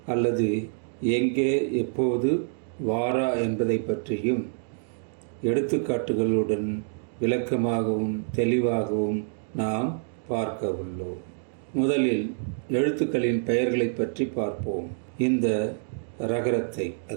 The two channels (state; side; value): silent; left; digital silence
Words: அல்லது எங்கே எப்போது வாரா என்பதை பற்றியும் எடுத்துக்காட்டுகளுடன் விளக்கமாகவும் தெளிவாகவும் நாம் பார்க்க உள்ளோம். முதலில் எழுத்துக்களின் பெயர்களை பற்றி பார்ப்போம். இந்த ரகரத்தை,